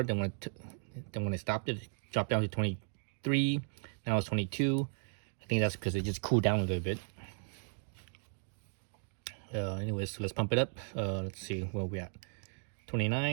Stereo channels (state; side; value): silent; left; 54 dB below the other